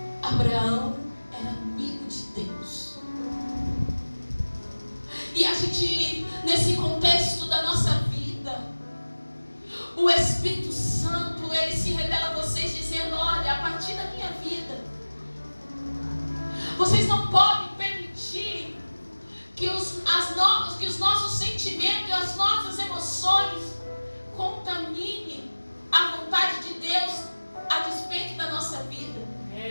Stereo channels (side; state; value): both; inverted; correlation -1.00